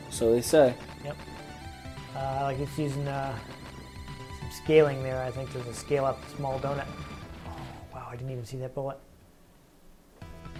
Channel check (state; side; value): identical; both; correlation 1.00